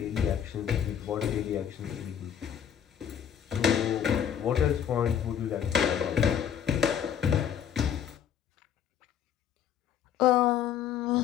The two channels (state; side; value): quieter; right; 8.9 dB